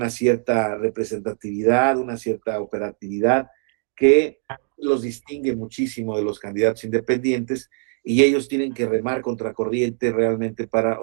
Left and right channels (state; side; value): quieter; left; 39.5 dB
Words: cierta representatividad, una cierta operatividad que los distingue muchísimo de los candidatos independientes y ellos tienen que remar contracorriente realmente para